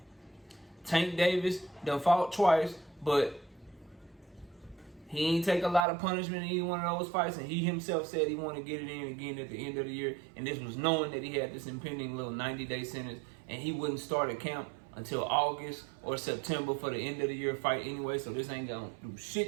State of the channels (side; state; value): left; drops out; at 5.9 s